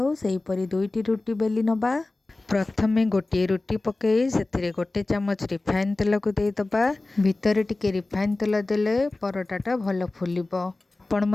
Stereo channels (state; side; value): quieter; right; 3.1 dB